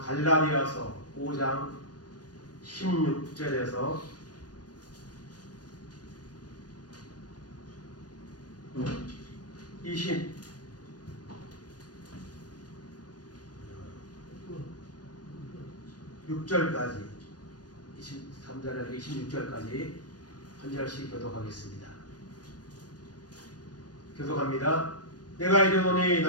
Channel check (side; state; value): right; late; 0.69 ms